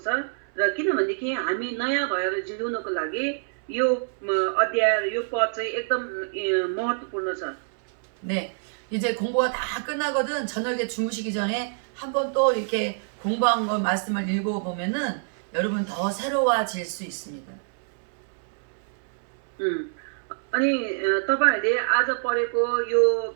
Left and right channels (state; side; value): silent; left; 61 dB below the other